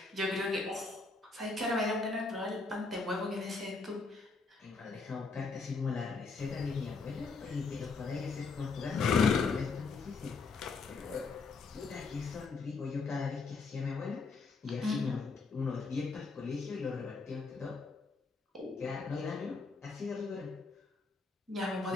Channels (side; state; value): right; quieter; 4.2 dB